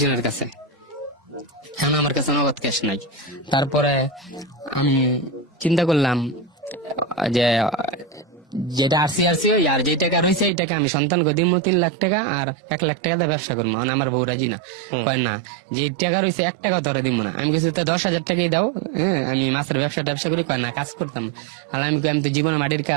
কাছে, এখন আমার কাছে নগদ ক্যাশ নাই। তারপরে আমি চিন্তা করলাম যে যেটা আরসি আর যে টাকা রয়েছে এই টাকা আমি সন্তানকে দিব 3 লাখ টাকা, আর 1 লাখ টাকা দিয়ে ব্যবসা করবো। মানে আমার বউ রাজি না, কয় না যে টাকা রয়েছে 1 টাকা তোরা দিব না। আমি কিছু 10,000 টাকাই দাও, আমি মাছের ব্যবসা করি, কয় না কাজ করতাম। আর আমি তো জীবনে মাটির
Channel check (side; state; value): left; drops out; at 10.5 s